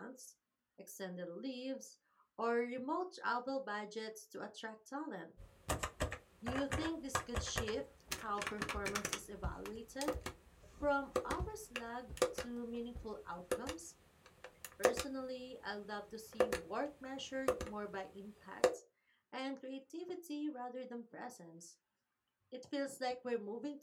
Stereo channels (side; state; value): both; identical; correlation 1.00